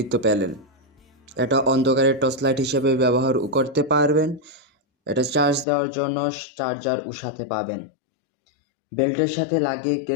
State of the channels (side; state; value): right; drops out; at 5.7 s